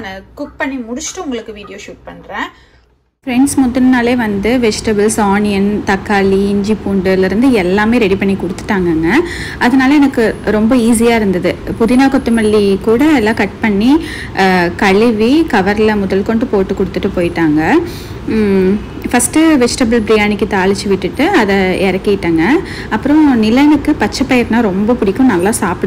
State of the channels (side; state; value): both; identical; correlation 1.00